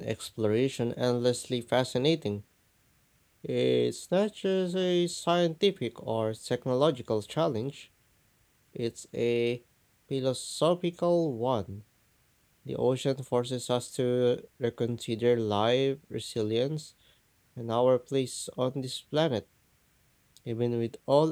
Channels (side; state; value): both; identical; correlation 1.00